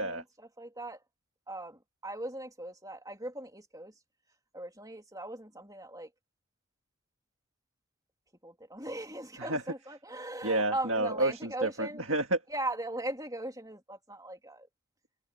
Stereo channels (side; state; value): both; normal; correlation -0.10